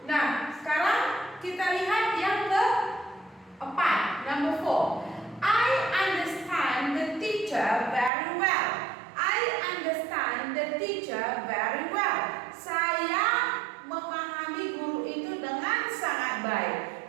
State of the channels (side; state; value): left; drops out; at 8.1 s